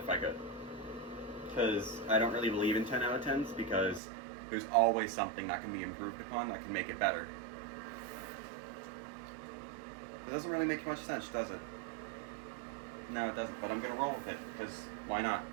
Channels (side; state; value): left; drops out; at 4.0 s